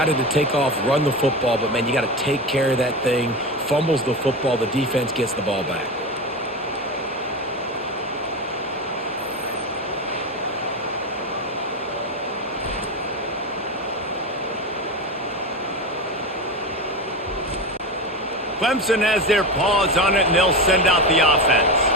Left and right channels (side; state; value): both; normal; correlation 0.21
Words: to take off, run the football, but, man, you got to take care of that thing. Fumbles the football, the defense gets the ball back. Clemson has their paws on it, and they'll send out the offense.